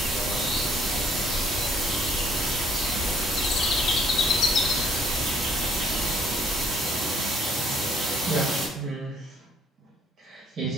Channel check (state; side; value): normal; both; correlation 0.62